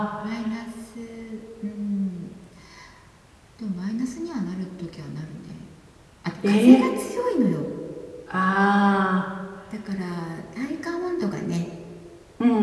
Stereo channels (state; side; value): identical; both; correlation 1.00